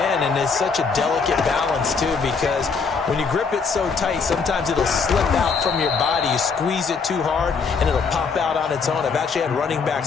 and it's such a delicate balance, too, because when you grip it so tight, sometimes it'll slip out from your body. You squeeze it too hard, and it'll pop out on its own. I've actually had running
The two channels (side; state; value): right; quieter; 5.2 dB